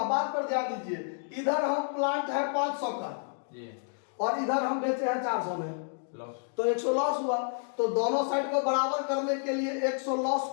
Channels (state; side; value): silent; right; digital silence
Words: बात पर ध्यान दीजिए, इधर हम प्लांट है 500 का और इधर हम बेचे हैं 400 में, तो 100 लॉस हुआ। तो दोनों साइड को बराबर करने के लिए 100 लॉस